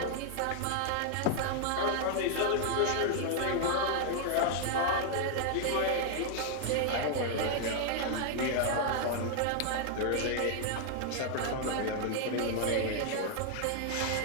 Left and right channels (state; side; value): different; both; correlation 0.00